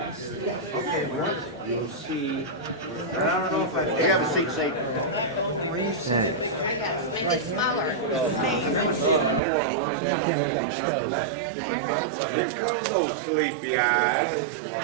okay, you'll see. I don't know if I have a seat, Satan. What do you say? I guess, make it smaller. Camera got stove.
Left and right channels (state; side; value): drops out; left; at 9.4 s